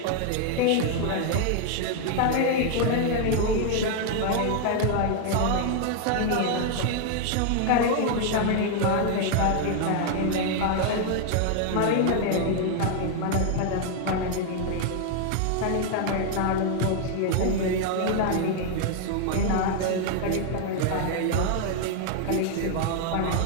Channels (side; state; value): both; different; correlation 0.00